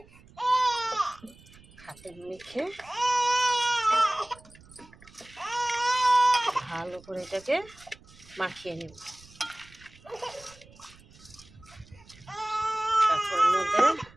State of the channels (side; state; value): right; noise; rumble, 24 dB below the sound